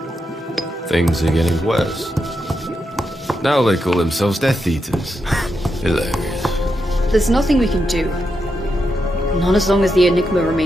Things are getting worse. Now they call themselves Death Eaters. Hilarious. There's nothing we can do. Not as long as the enigma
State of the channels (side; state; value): both; normal; correlation 0.85